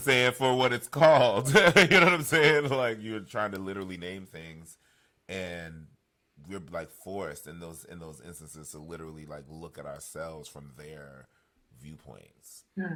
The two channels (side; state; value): both; identical; correlation 1.00